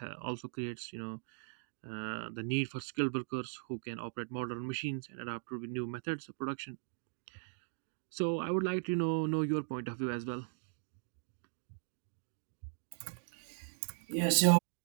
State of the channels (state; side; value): silent; left; digital silence